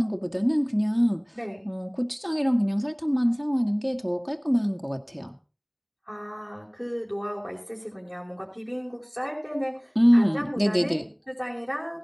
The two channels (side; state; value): both; identical; correlation 1.00